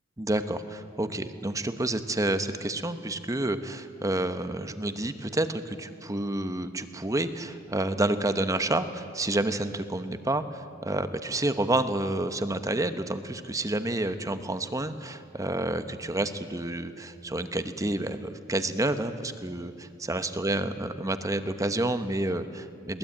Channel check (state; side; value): normal; both; correlation 0.62